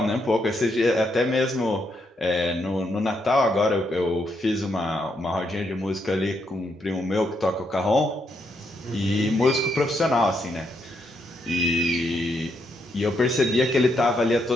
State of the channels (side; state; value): both; normal; correlation 0.78